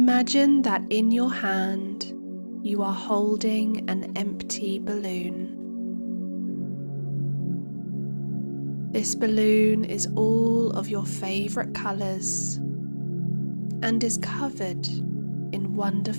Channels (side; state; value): both; inverted; correlation -1.00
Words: that in your hand you are holding an empty balloon. This balloon is all of your favourite colours and is covered in